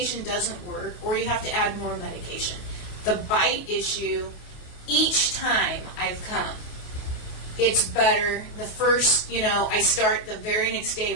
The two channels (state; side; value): late; right; 27 ms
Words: doesn't work, or you have to add more medication. The bite issue, each time I've come, it's better. The first, I start the very next day